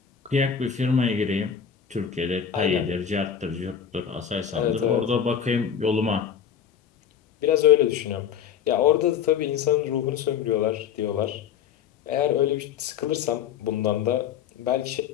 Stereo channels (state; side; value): quieter; right; 8.1 dB